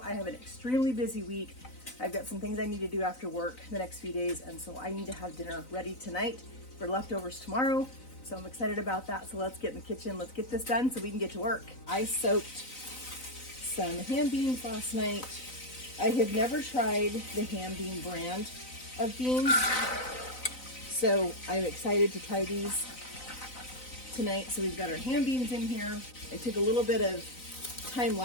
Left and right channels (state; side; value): late; right; 4.0 ms